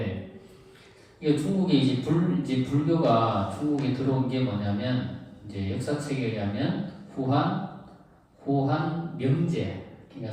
이게 중국에 이제 불교가 중국에 들어온 게 뭐냐면 이제 역사책에 의하면 후한 명제 그러니까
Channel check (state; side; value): identical; both; correlation 1.00